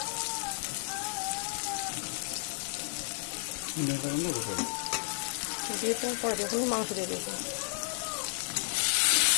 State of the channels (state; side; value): silent; right; digital silence